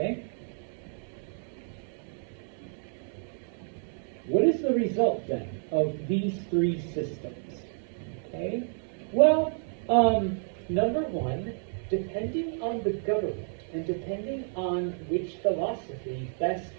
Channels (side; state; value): left; silent; 58 dB below the other